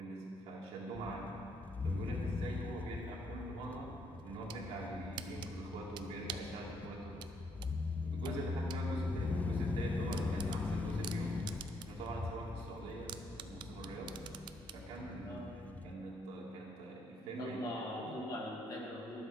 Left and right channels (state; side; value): normal; both; correlation 0.73